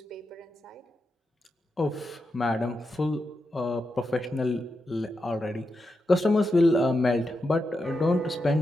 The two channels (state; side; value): normal; both; correlation 0.87